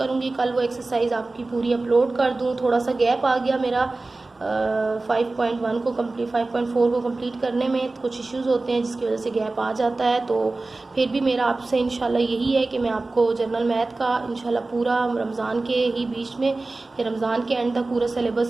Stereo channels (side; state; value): left; quieter; 3.3 dB